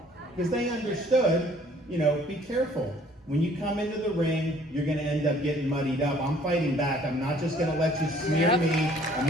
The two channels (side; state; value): both; normal; correlation 0.57